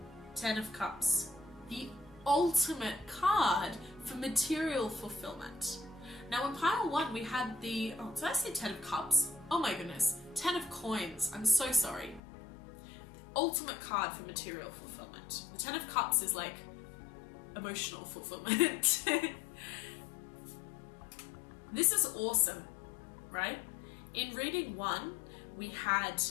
10 of Cups, the ultimate card for material fulfillment. Now in pile 1 we had the, oh, did I say 10 of Cups? Oh my goodness, 10 of Coins, I'm so sorry. The ultimate card for material fulfillment. The 10 of Cups is like emotional fulfillment. This is awesome, right? In reading 1, we had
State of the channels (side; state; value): right; drops out; at 12.2 s